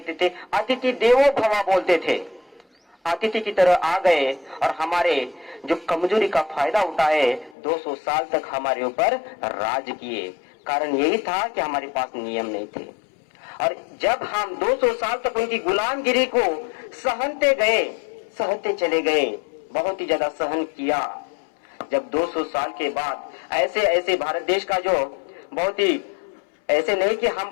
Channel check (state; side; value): drops out; right; at 7.6 s